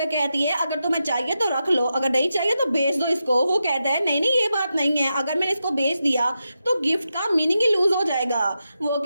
कहती है अगर तुम्हें चाहिए तो रख लो, अगर नहीं चाहिए तो बेच दो इसको। वो कहता है नहीं नहीं ये बात नहीं है, अगर मैंने इसको बेच दिया तो गिफ्ट का मीनिंग ही लूज हो जाएगा। वो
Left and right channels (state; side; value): inverted; both; correlation -0.88